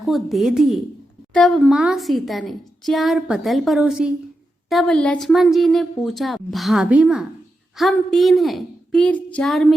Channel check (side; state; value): both; normal; correlation 0.88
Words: दे दिए। तब माँ सीता ने 4 पतल परोसी। तब लक्ष्मण जी ने पूछा, भाभी माँ, हम 3 हैं, फिर 4